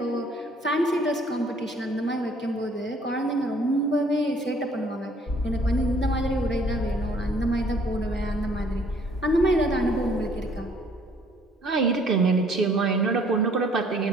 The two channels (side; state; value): both; normal; correlation 0.60